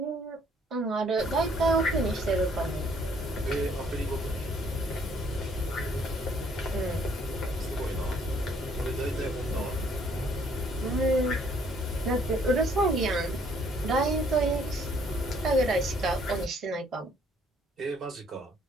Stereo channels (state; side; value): normal; both; correlation 0.63